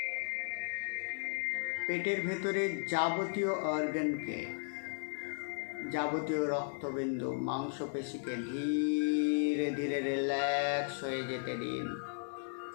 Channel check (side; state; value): right; silent; digital silence